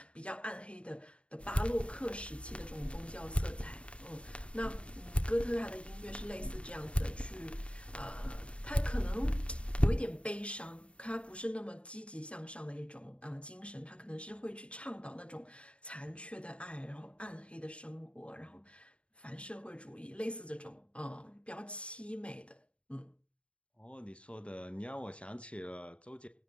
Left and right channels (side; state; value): right; late; 0.060 ms